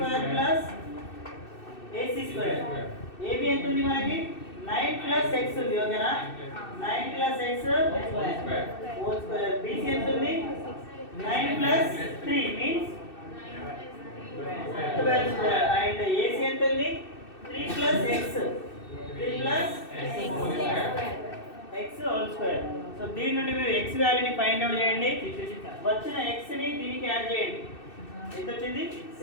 plus AC square. AB ఎంత ఉంది మనకి? 9 plus x ఉంది, ఓకేనా? 9 plus x whole square. BC ఎంత ఉంది? 9 plus 3 means 12 square. And AC ఎంత ఉంది? 3 plus x. 3 plus x whole square. So దీని నుండి మీరు x వాల్యూని ఫైండ్ అవుట్ చేయండి. వచ్చిన x ని దీనికి యాడ్ చేయండి. ఎంత వచ్చింది?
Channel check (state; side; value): late; right; 2.6 ms